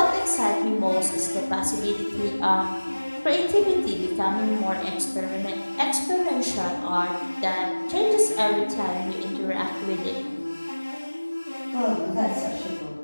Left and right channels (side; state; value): both; inverted; correlation -1.00